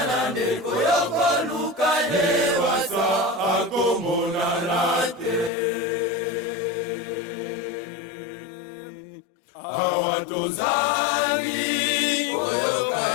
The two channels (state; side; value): drops out; right; at 5.5 s